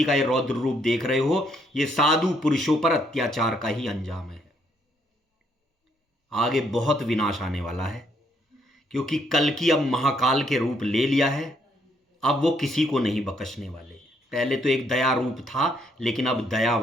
का ये रौद्र रूप देख रहे हो, ये साधु पुरुषों पर अत्याचार का ही अंजाम है। आगे बहुत विनाश आने वाला है, क्योंकि कल्कि अब महाकाल के रूप ले लिया है। अब वो किसी को नहीं बख्शने वाले। पहले तो एक दया रूप था, लेकिन अब दया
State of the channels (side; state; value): both; normal; correlation 0.71